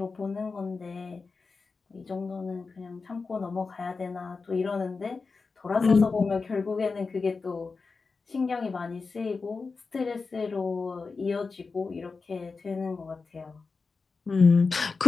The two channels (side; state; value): right; quieter; 4.4 dB